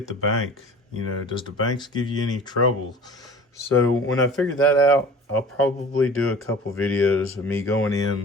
the bank? Does the banks give you any trouble? So when I figure that out, I'll probably do a couple videos of me going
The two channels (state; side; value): normal; both; correlation 0.42